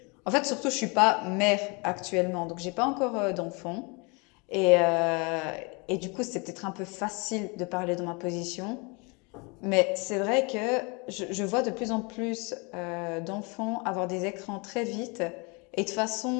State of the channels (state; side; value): quieter; right; 30.4 dB